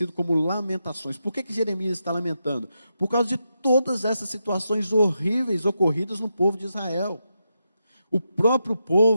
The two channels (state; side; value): inverted; both; correlation -0.86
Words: como Lamentações. Por que Jeremias está lamentando? Por causa de todas essas situações horríveis ocorridas no povo de Israel. O próprio